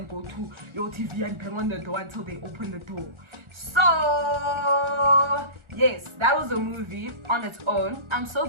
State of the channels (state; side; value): late; left; 1.4 ms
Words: go to your TV and bang on the door until they open the door. So yes, that was a movie on its own. I'm so